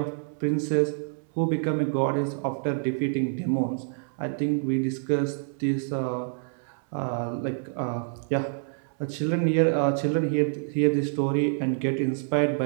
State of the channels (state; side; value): silent; left; 60 dB below the other